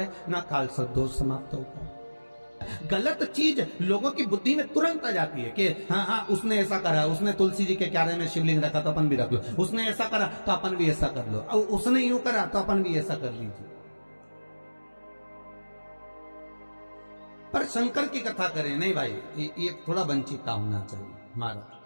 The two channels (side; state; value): both; inverted; correlation -1.00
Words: ना काल सर्प दोष समाप्त होता है। गलत चीज लोगों की बुद्धि में तुरंत आ जाती है कि हाँ उसने ऐसा करा, उसने तुलसी जी के क्यारे में शिवलिंग रखा तो अपन भी रख लो, उसने ऐसा करा तो अपन भी ऐसा कर लो, और उसने यूं करा तो अपन भी ऐसा कर लीजिए। पर शंकर की कथा करें नहीं भाई, ये थोड़ा वंचिता होना चाहिए। हमारा